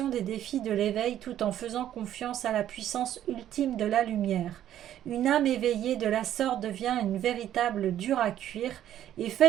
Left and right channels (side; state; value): left; quieter; 11.5 dB